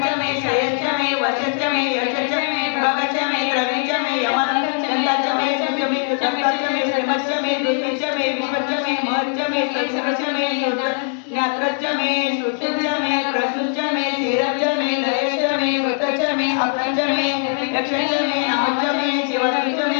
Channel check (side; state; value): right; silent; 55 dB below the other